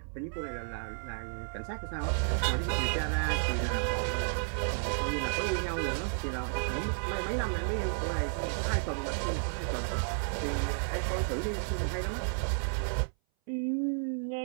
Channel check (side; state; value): left; silent; 56 dB below the other